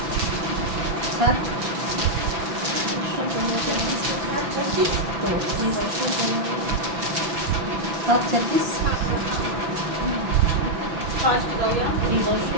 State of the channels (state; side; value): late; left; 6.0 ms